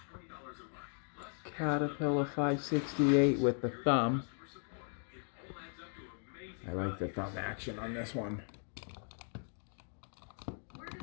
Caterpillar 568 with the thumb. I like the thumb action on this one.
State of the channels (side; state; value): right; silent; 53 dB below the other